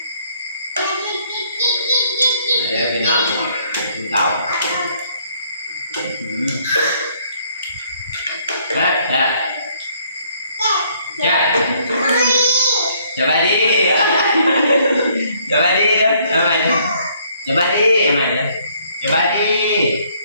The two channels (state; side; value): inverted; both; correlation -0.65